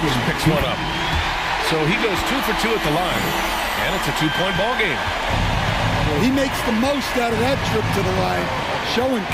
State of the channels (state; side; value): identical; both; correlation 1.00